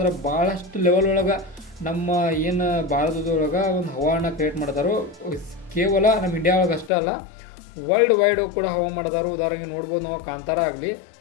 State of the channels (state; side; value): drops out; right; at 6.9 s